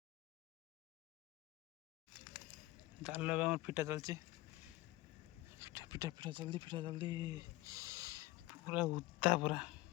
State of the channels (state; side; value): quieter; right; 18.6 dB